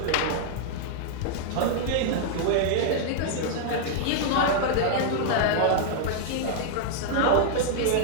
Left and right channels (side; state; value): both; different; correlation -0.01